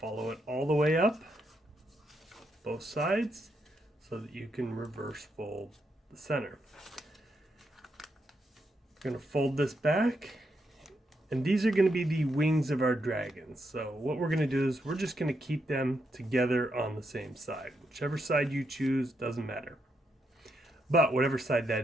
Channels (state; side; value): normal; both; correlation 0.80